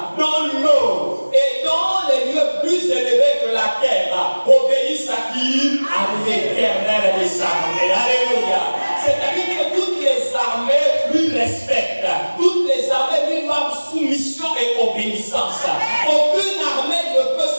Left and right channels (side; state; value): both; inverted; correlation -1.00